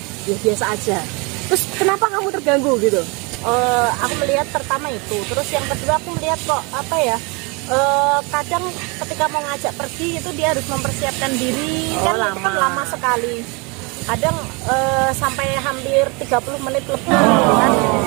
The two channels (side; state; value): left; quieter; 29.7 dB